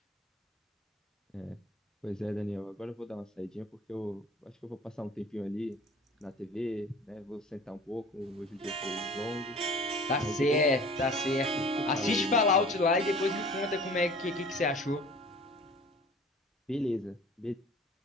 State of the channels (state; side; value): normal; both; correlation 0.45